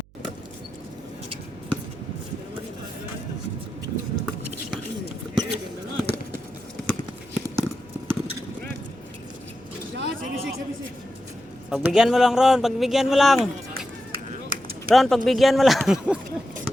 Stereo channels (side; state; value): right; noise; hum, 28 dB below the sound